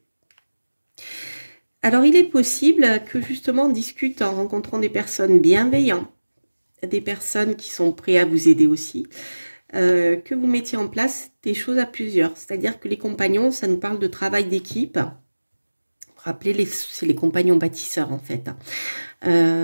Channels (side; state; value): both; inverted; correlation -1.00